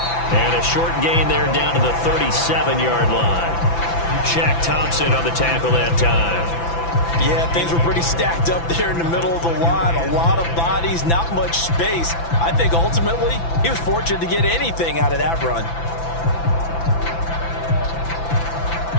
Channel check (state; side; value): late; right; 5.9 ms